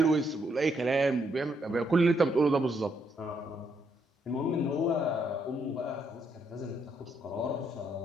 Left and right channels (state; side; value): normal; both; correlation 0.75